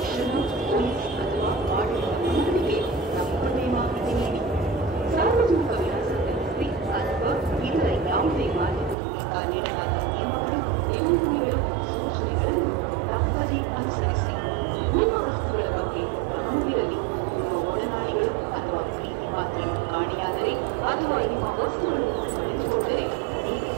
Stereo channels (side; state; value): left; drops out; at 9.0 s